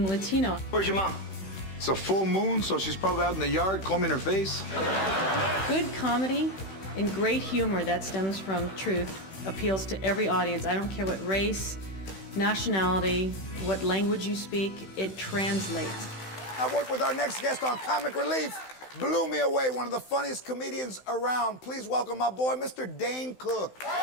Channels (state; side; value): late; right; 16 ms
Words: Latino. Where's your mom? It's a full moon, so she's probably out in the yard combing her face. Good comedy and great humor that stems from truth appeals to every audience. I don't care what race, nationality, what language you speak, it translates. I work with our next guest on Comic Relief. Blew me away, one of the funniest comedians around. Please welcome my boy, Mr. Dane Cook.